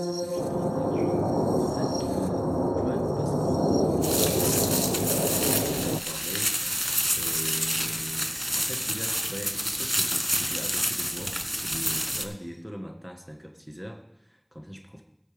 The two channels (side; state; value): both; identical; correlation 1.00